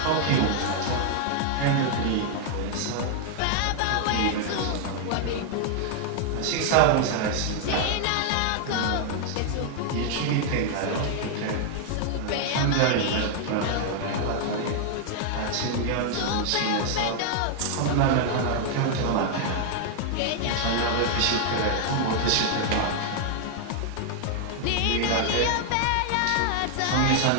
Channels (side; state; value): both; different; correlation 0.00